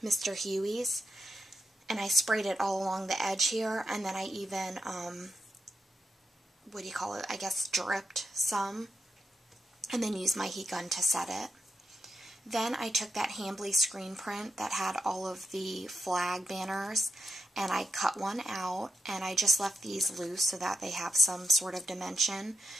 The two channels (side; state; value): both; normal; correlation 0.86